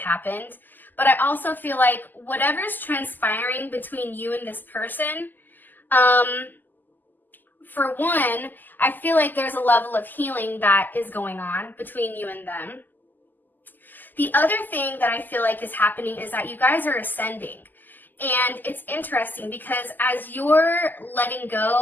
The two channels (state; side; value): late; right; 0.087 ms